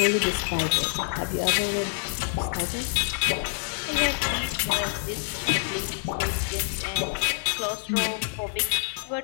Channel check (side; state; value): right; silent; digital silence